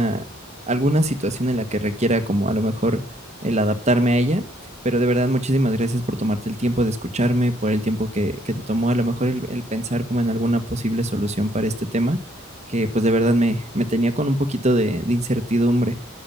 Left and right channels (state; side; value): normal; both; correlation 0.69